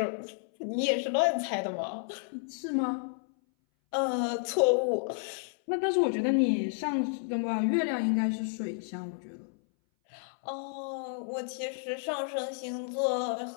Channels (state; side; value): silent; right; 57 dB below the other